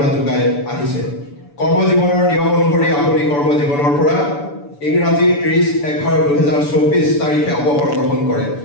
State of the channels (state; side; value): late; right; 6.9 ms